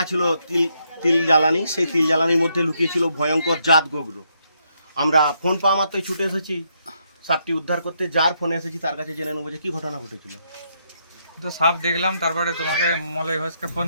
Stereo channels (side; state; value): both; inverted; correlation -0.76